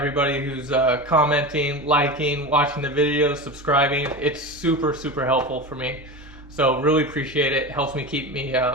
who's commenting, liking, watching the videos, subscribing. It's super, super helpful for me. So really appreciate it. Helps me keep me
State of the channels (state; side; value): normal; both; correlation 0.26